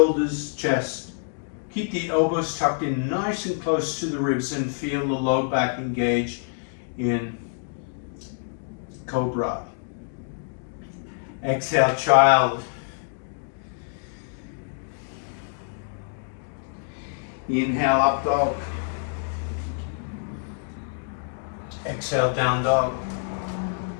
chest. Keep the elbows tucked in nice and close to the ribs, and feel the low back engage in cobra. Exhale, child. Inhale, up dog. Exhale, down dog.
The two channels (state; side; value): silent; right; digital silence